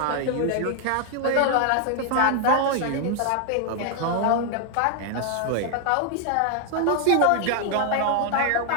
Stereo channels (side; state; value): both; different; correlation 0.00